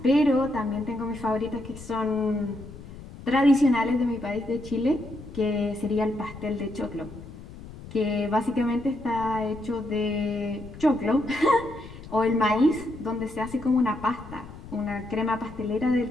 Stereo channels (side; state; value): left; noise; rumble, 15 dB below the sound